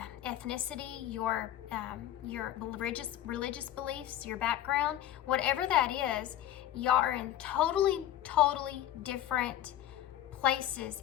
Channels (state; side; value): quieter; right; 12.3 dB